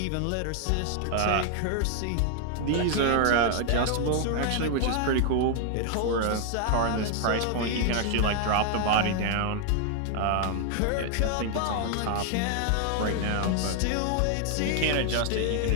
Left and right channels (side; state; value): both; different; correlation 0.00